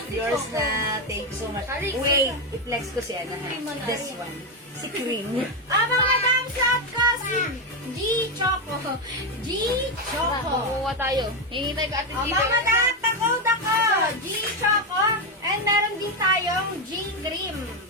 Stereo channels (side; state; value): both; normal; correlation 0.08